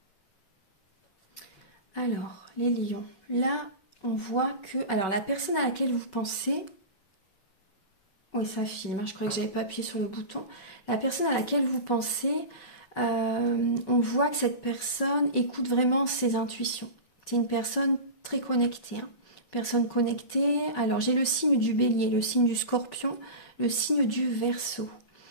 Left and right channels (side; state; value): right; late; 5.3 ms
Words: Alors, les lions. Là, on voit que... Alors, la personne à laquelle vous pensez... Oui, ça filme. Hein, je crois que j'avais pas appuyé sur le bouton. La personne à laquelle vous pensez, on voit que cette personne écoute vraiment ses intuitions. C'est une personne très connectée. Hein. Personne connectée. Alors, j'ai le signe du bélier, le signe du scorpion, le signe du verseau.